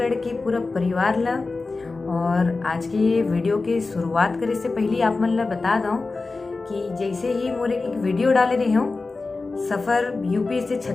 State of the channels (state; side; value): quieter; right; 3.8 dB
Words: के पूरा परिवार ला। और आज के ये वीडियो की शुरुआत करे से पहले आप मन ला बता दूं कि जैसे ही मोर एक वीडियो डाले रही हूँ सफ़र यूपी से